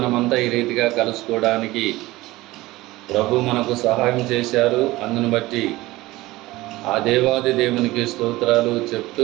ఈ రీతిగా కలుసుకోవడానికి ప్రభు మనకు సహాయం చేశారు. అందును బట్టి ఆ దేవాది దేవునికి స్తోత్రాలు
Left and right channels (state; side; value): quieter; left; 18.9 dB